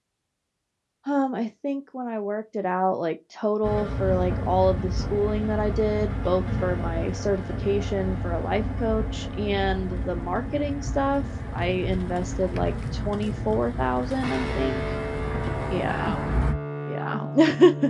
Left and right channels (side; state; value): both; identical; correlation 1.00